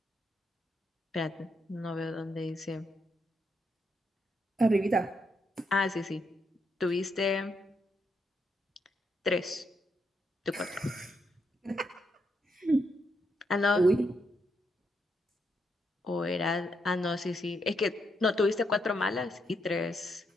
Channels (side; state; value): both; normal; correlation 0.78